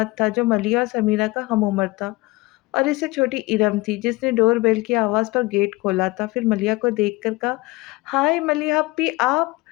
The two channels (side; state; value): right; quieter; 22.0 dB